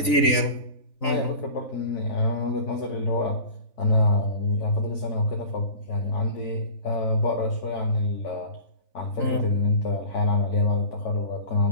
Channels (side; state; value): right; late; 3.9 ms